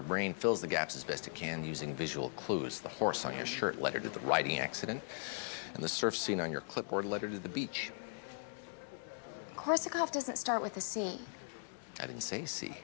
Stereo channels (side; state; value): right; silent; 52 dB below the other